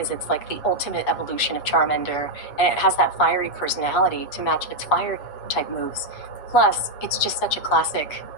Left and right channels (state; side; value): late; right; 7.2 ms